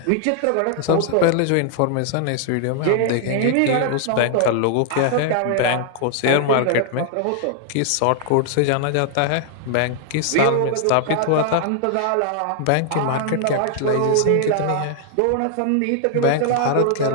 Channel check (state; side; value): different; both; correlation 0.00